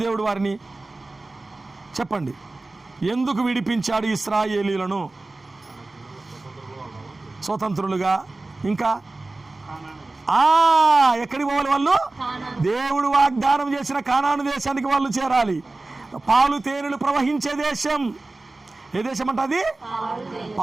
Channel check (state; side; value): quieter; left; 3.1 dB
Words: దేవుడు వారిని? చెప్పండి. ఎందుకు విడిపించాడు ఇశ్రాయేలీయులను స్వతంత్రులుగా? ఇంకా ఎక్కడికి పోవాలి వాళ్ళు? దేవుడు వాగ్దానం చేసిన కానాను దేశానికి వాళ్ళు చేరాలి. పాలు తేనెలు ప్రవహించే దేశం. ఏ దేశం అంట అది?